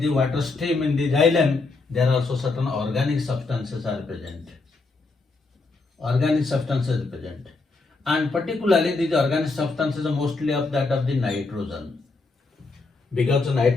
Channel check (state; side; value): quieter; right; 3.7 dB